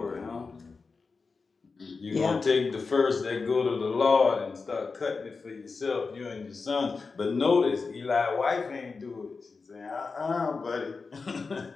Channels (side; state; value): right; quieter; 4.5 dB